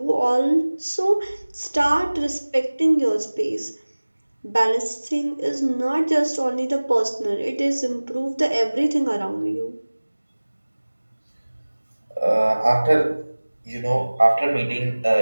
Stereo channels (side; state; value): both; inverted; correlation -1.00